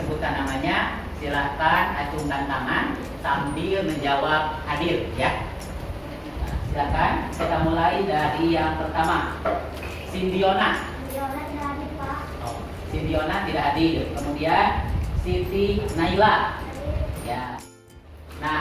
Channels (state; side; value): identical; both; correlation 1.00